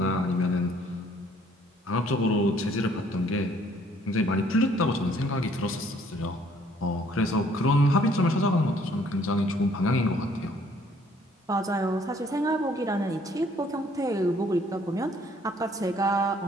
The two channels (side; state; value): both; normal; correlation 0.61